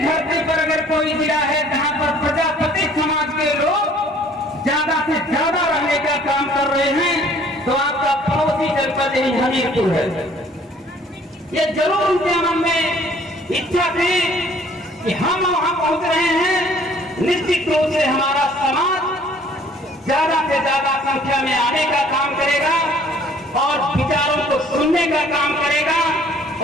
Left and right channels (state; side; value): normal; both; correlation 0.56